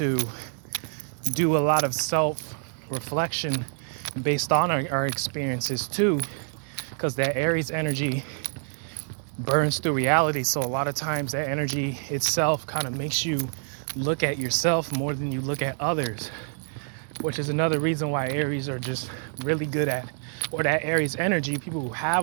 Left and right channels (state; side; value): silent; left; 60 dB below the other